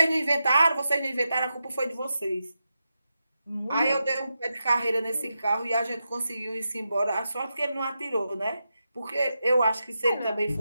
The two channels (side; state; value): both; inverted; correlation -0.88